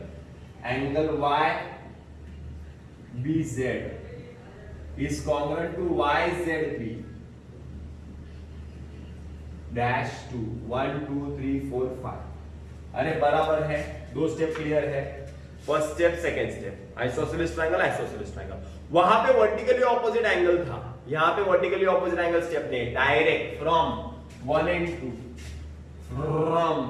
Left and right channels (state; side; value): identical; both; correlation 1.00